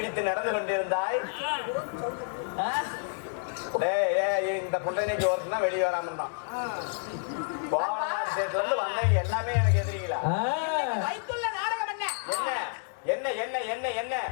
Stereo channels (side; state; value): right; silent; digital silence